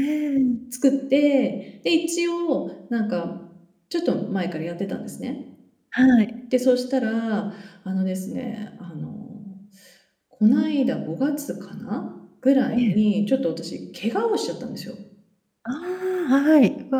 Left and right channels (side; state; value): both; identical; correlation 1.00